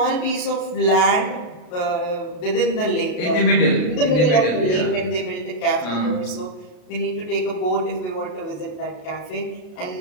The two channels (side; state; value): right; late; 33 ms